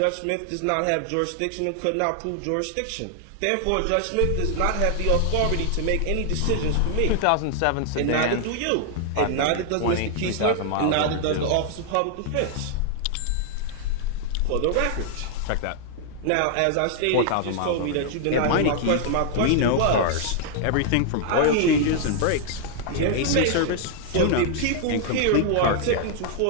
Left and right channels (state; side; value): different; both; correlation 0.00